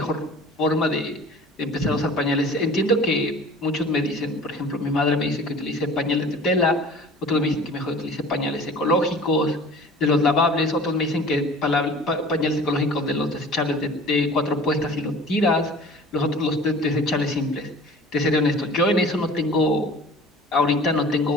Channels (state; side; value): normal; both; correlation 0.44